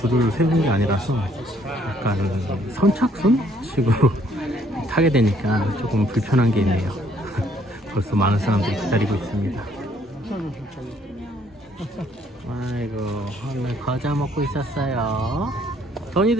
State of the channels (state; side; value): normal; both; correlation 0.65